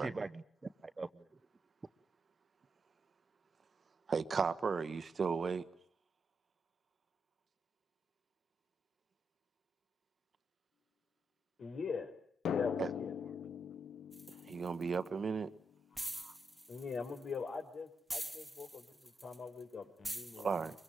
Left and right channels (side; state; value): both; normal; correlation 0.83